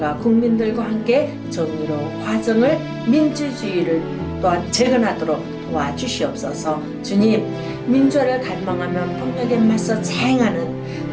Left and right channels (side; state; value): both; identical; correlation 1.00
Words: 국민들과 함께 정의로 과정을 민주주의를 또한 재건하도록 도와주시옵소서. 주님, 민주화를 갈망하면 폭력에 맞서